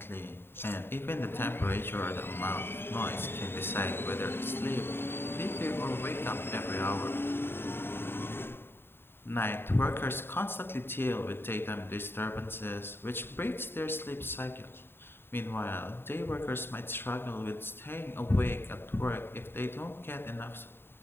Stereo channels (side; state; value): right; late; 0.11 ms